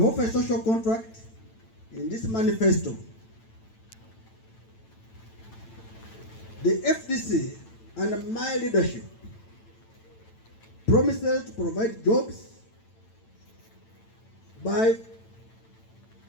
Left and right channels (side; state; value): right; late; 9.0 ms